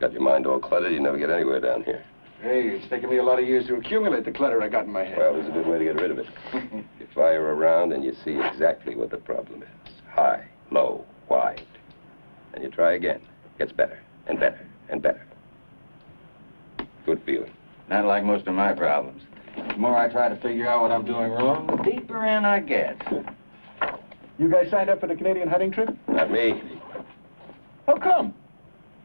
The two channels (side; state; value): both; inverted; correlation -1.00